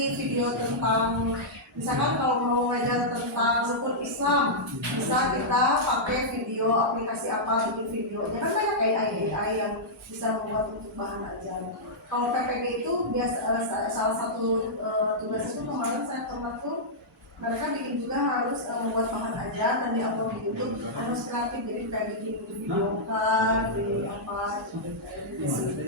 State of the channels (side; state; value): both; normal; correlation -0.10